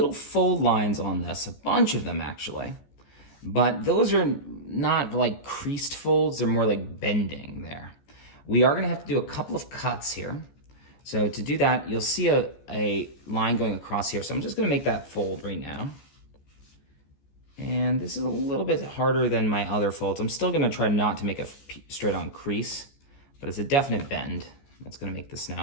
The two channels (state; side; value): late; right; 14 ms